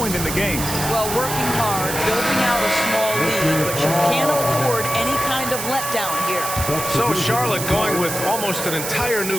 in the game. Well, working hard, building out a small lead, but you can't afford any kind of letdown here. So Charlotte going with almost an entire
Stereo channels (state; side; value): noise; right; hiss, 5 dB below the sound